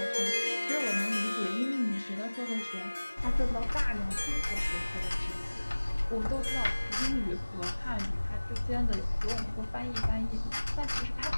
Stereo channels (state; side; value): inverted; both; correlation -1.00